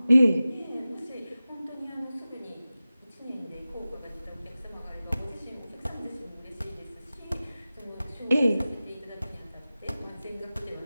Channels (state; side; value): inverted; both; correlation -0.96